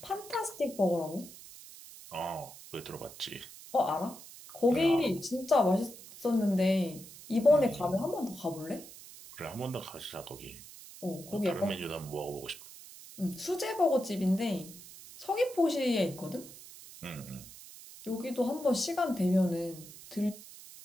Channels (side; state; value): right; noise; hiss, 17 dB below the sound